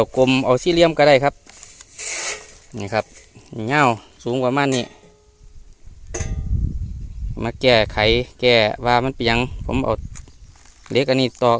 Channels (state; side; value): identical; both; correlation 1.00